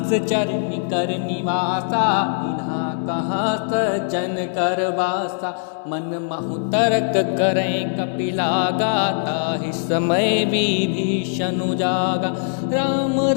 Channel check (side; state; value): right; silent; 65 dB below the other